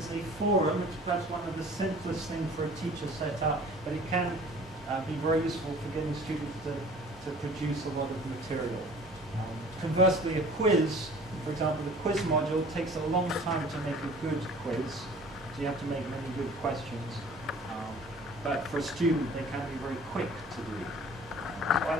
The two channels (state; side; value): normal; both; correlation 0.48